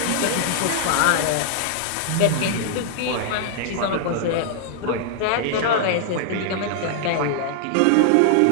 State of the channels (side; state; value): both; different; correlation -0.01